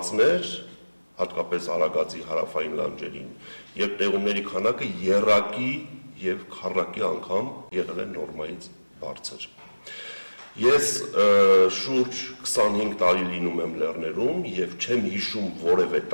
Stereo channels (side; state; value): both; inverted; correlation -1.00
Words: հատկապես Արագածի հարավային լանջերին, եւ տեղումների քանակը եռակի եւ քառակի անգամ եղել է նորմայից բարձր։ Ես շուրջ 25 տարի լինում եմ լեռներում եւ չեմ հիշում որևէ